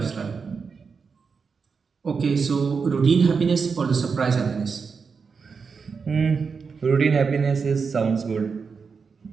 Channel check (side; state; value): left; quieter; 5.4 dB